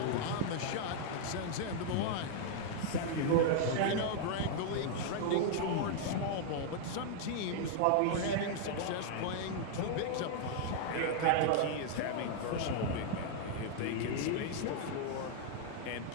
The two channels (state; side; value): different; both; correlation 0.00